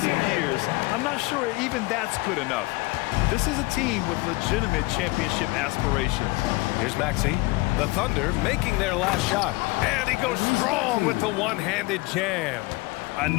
years, I'm not sure even that's good enough. This is a team with legitimate championship aspirations. Here's Maxey. The Thunder making their last shot. And he goes strong with the one-handed jam. I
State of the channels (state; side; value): quieter; right; 23.1 dB